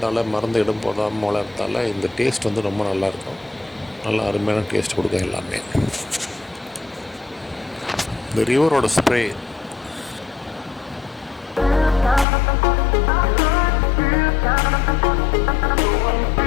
மருந்து இடம் போடாமல் வளர்றதால இந்த டேஸ்ட் வந்து ரொம்ப நல்லாயிருக்கும். நல்லா அருமையான டேஸ்ட் கொடுக்கும் எல்லாமே. இந்த ரிவரோட ஸ்ப்ரே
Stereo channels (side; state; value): right; drops out; at 12.2 s